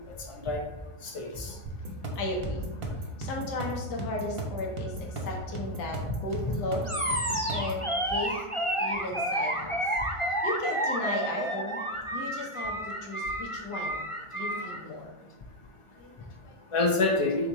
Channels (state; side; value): late; right; 1.4 ms